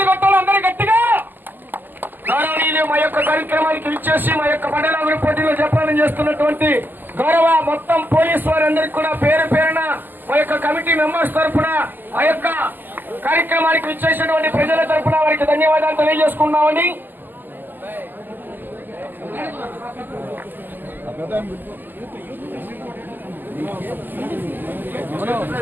కొట్టాలి అందరూ గట్టిగా. గౌరవనీయులు మా యొక్క కార్యక్రమానికి విచ్చేసి మా యొక్క మండల అభివృద్ధి పోటీలో జపానం చేస్తున్నటువంటి గౌరవ మొత్తం పోలీసు వారందరికీ కూడా పేరు పేరున మా యొక్క కమిటీ మెంబర్స్ తరఫున, ఆ యొక్క కార్యక్రమానికి విచ్చేసినటువంటి ప్రజల తరఫున వారికి ధన్యవాదాలు తెలియజేసుకున్నామండి.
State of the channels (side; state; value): left; late; 0.089 ms